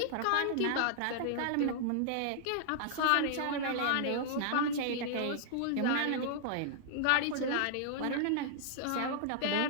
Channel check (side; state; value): both; different; correlation -0.01